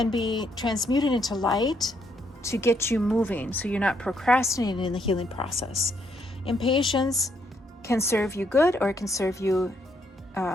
be transmuted into light to get you moving, so you're not procrastinating in the healing process. Impatience can serve you good, or it can serve you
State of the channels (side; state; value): both; normal; correlation 0.73